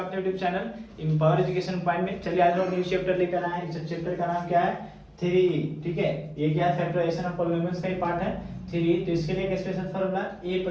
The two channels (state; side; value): identical; both; correlation 1.00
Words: YouTube channel empower education point में। चलिए आज हम न्यू चैप्टर लेकर आए हैं। इस चैप्टर का नाम क्या है? 3E। ठीक है, ये क्या है? फैक्टराइजेशन ऑफ पॉलिनोमियल्स का ही पार्ट है 3E। तो इसके लिए एक special formula a